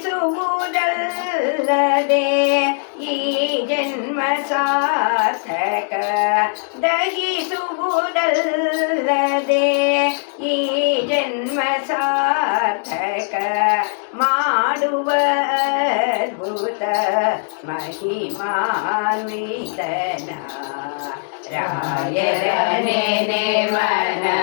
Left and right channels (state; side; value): silent; right; digital silence